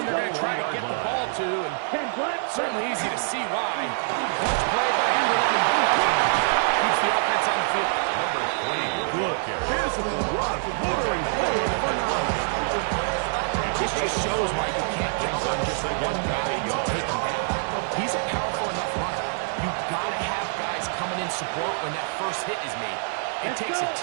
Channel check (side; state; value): left; silent; 57 dB below the other